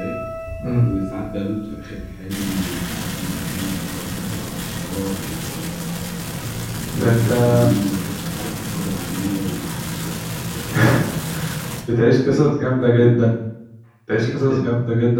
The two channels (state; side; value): identical; both; correlation 1.00